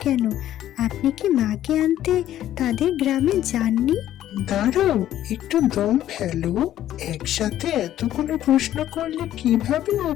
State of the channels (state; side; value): quieter; right; 12.4 dB